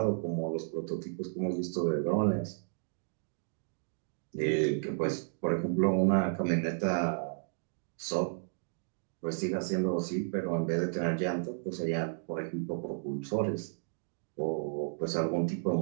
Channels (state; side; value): silent; left; digital silence